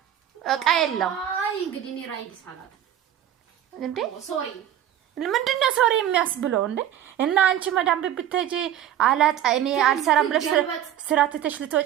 እቃ የለም አይ እንግዲህ እኔ ራይድ ሰላት እንዴ ሶሪ ምንድነው ሶሪ የሚያስብለው እንዴ እና አንቺ መዳም ብትሄጂ አላጣ እኔ አልሰራም ብለሽ ስራ ትተሽ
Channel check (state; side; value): quieter; left; 11.1 dB